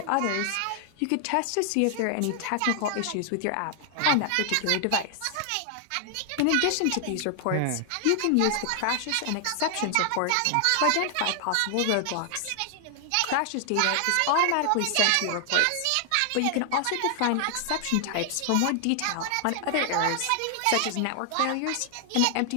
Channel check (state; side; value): different; both; correlation 0.00